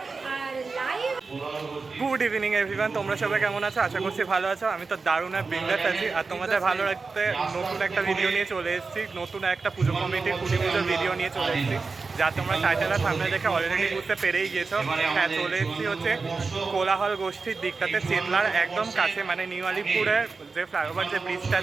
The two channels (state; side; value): quieter; left; 4.3 dB